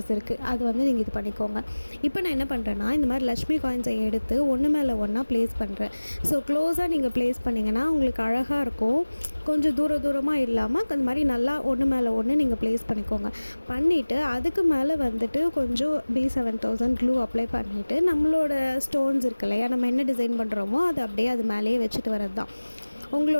இருக்குது. அது நீங்கள் இது பண்ணிக்கோங்க. இப்போ நான் என்ன பண்ணுறேன்னா இந்த மாதிரி லக்ஷ்மி காயின்ஸை எடுத்து ஒன்று மேலே ஒன்றா ப்ளேஸ் பண்ணுறேன். ஸோ க்ளோஸாக நீங்கள் ப்ளேஸ் பண்ணிங்கன்னா உங்களுக்கு அழகாக இருக்கும். கொஞ்சம் தூரமாக இல்லாமல் அந்த மாதிரி நல்லா ஒன்று மேலே ஒன்று நீங்கள் ப்ளேஸ் பண்ணிக்கோங்க. பண்ணிவிட்டு அதுக்கு மேலே கொஞ்சம் B7000 க்ளூ அப்ளை பண்ணிவிட்டு நம்மளோட ஸ்டோன்ஸ் இருக்கு இல்லையா, நம்ம என்ன டிசைன் பண்ணுறோமோ அது அப்படியே அது மேலேயே வச்சுட்டு வரது தான்.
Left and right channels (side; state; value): both; inverted; correlation -1.00